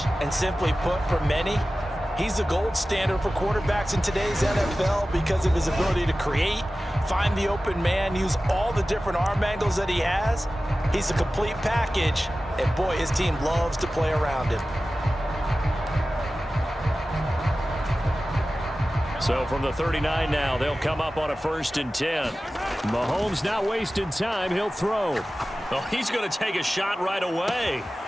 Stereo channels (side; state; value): both; normal; correlation 0.95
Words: And simply put, for many, he's the gold standard for quarterbacks in today's NFL because of his ability to create, find the open man, use all the different arm angles that he has. He's a complete package, and boy, his team loves to play around him. So from the 39 now, they'll come up on a 1st and 10. Mahomes not wasting time. He'll throw. Oh, he's going to take a shot right away.